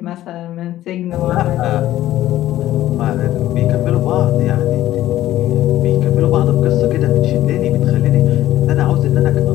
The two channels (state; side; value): quieter; right; 14.0 dB